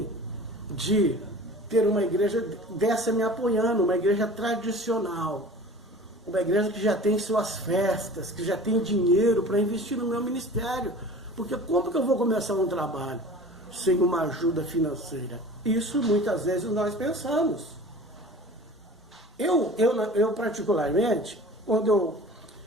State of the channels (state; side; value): normal; both; correlation 0.41